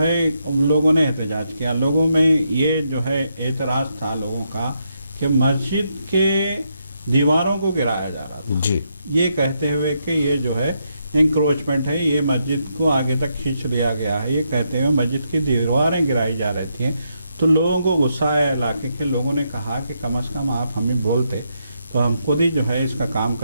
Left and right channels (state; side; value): inverted; both; correlation -0.80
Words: لوگوں نے احتجاج کیا۔ لوگوں میں یہ جو ہے اعتراض تھا لوگوں کا کہ مسجد کے دیواروں کو گرایا جا رہا تھا، جی یہ کہتے ہوئے کہ یہ جو ہے انکروچمنٹ ہے، یہ مسجد کو آگے تک کھینچ لیا گیا ہے، یہ کہتے ہوئے مسجد کی دیواریں گرائی جا رہی تھیں۔ تو لوگوں کو غصہ آیا، علاقے کے لوگوں نے کہا کہ کم از کم آپ ہمیں بولتے تو ہم خود ہی جو ہے اس کا کام